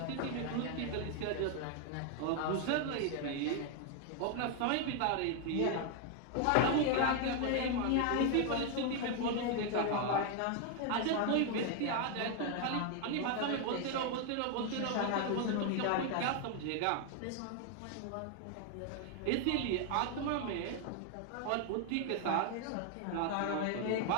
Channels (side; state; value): both; different; correlation 0.01